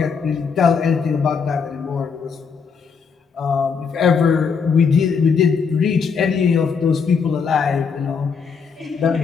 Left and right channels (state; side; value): quieter; right; 5.8 dB